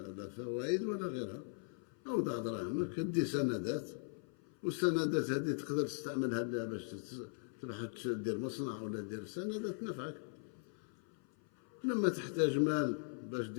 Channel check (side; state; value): right; silent; 51 dB below the other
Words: لا فوائد ولا غيرها. أوضع دراهمك، دي سندات، والسندات هذه تقدر تستعملها باش تروح تدير مصنع ولا دير سندات نفعك. لما تحتاج مال باش